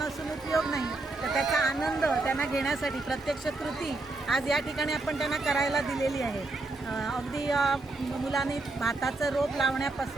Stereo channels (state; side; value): quieter; left; 3.2 dB